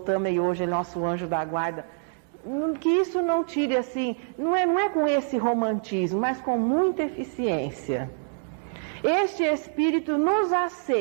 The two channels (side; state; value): left; silent; digital silence